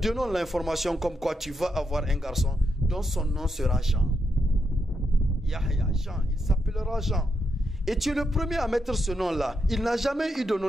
l'information comme quoi tu vas avoir un garçon dont son nom sera Jean. Yahya, Jean, il s'appellera Jean. Et tu es le premier à mettre ce nom-là. Il n'a jamais eu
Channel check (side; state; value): both; normal; correlation 0.82